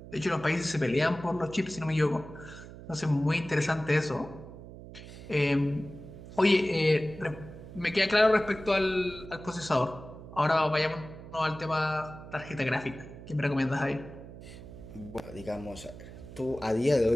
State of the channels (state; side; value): noise; right; hum, 15 dB below the sound